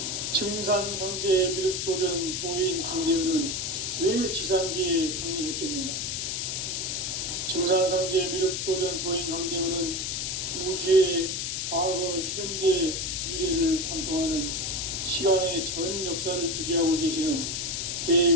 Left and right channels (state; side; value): noise; left; hiss, 2 dB below the sound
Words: 증산성제 미륵도전 도인 강대훈은 왜 지상계에 강림했겠는가? 증산성제 미륵도전 도인 강대훈은 우주의 과거, 현재, 미래를 관통하는 시간의 전 역사를 주재하고 계시는